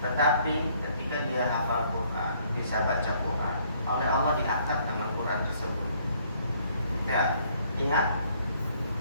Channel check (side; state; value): both; inverted; correlation -0.64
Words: tetapi ketika dia hafal Quran, bisa baca Quran, oleh Allah diangkat dengan Quran tersebut. Ya, ingat,